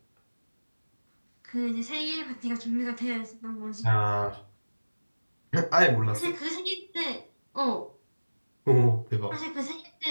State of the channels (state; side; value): inverted; both; correlation -1.00